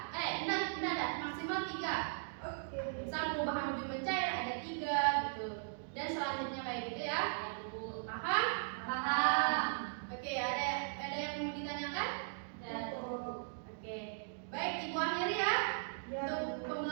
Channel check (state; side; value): silent; left; digital silence